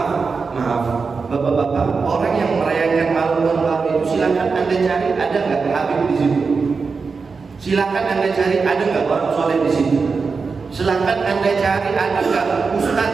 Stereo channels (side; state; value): left; quieter; 4.8 dB